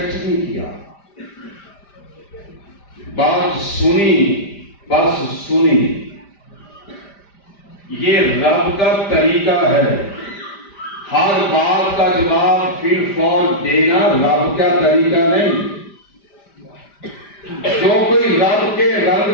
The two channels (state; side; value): late; right; 5.0 ms